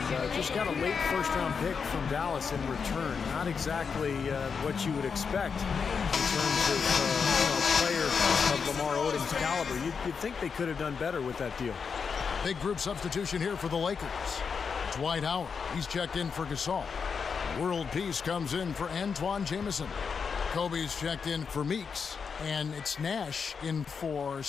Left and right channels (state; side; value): quieter; right; 5.9 dB